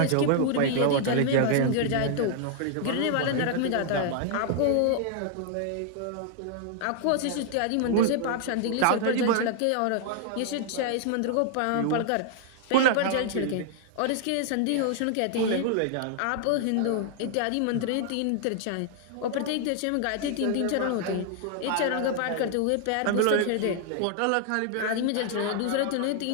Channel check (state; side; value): different; both; correlation 0.00